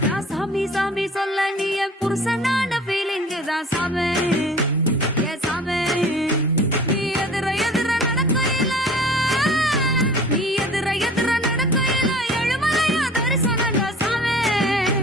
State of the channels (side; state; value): both; normal; correlation 0.45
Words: நான் சாமி சாமி சொல்ல நீ என் புருஷனான ஃபீலிங் தான் சாமே ஏ சாமே நீ எதிர எதிர நடக்கையில நீ எதிர எதிர நடக்கையில எழுமலையா தரிசனம் சாமே